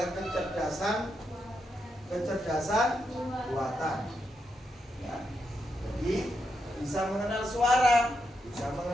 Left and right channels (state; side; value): normal; both; correlation 0.83